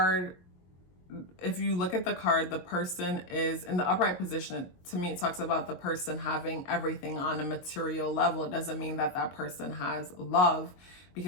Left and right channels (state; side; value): late; right; 22 ms